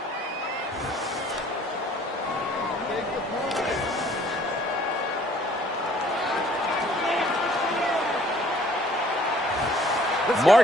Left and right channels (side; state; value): both; normal; correlation 0.57